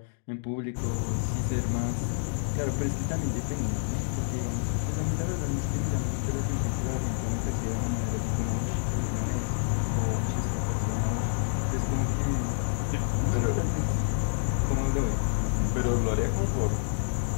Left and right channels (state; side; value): silent; right; digital silence